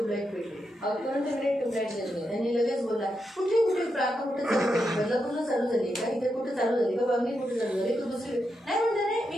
भेटली और तुरंत मेरे ट्यूबलाइट जल गए। त्यांनी लगेच बोला कुठे कुठे प्रार्थना कुठे चालू झाली, बदलापूरला चालू झाली का, इथे कुठे चालू झाली का, बांगली कुठे चालू झाली, तू दुसरी नाही म्हणते नाही।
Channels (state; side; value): normal; both; correlation 0.85